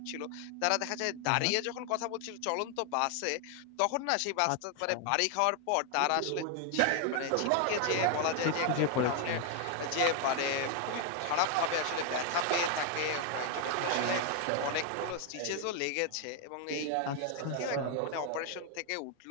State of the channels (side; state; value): both; different; correlation 0.00